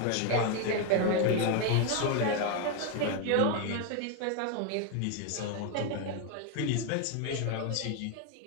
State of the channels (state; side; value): different; both; correlation 0.01